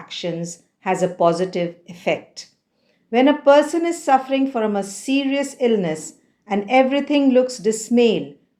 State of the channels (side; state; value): both; identical; correlation 1.00